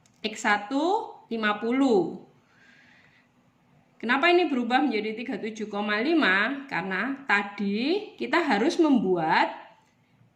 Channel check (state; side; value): identical; both; correlation 1.00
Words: X1 50. Kenapa ini berubah menjadi 37,5? Karena tadi kita harus membuat